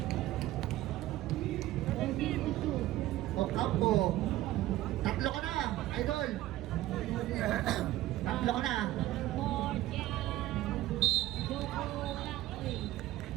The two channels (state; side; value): quieter; left; 15.4 dB